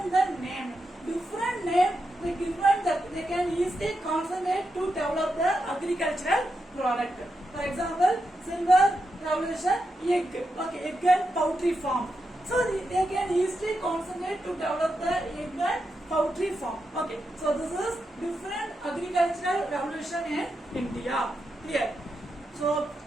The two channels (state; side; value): normal; both; correlation 0.86